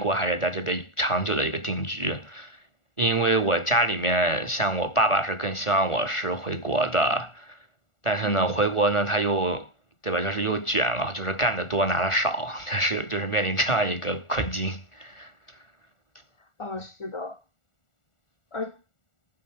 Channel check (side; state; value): right; late; 1.4 ms